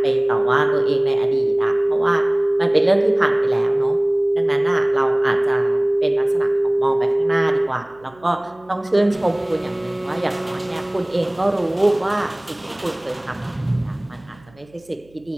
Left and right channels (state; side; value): noise; right; hum, 29 dB below the sound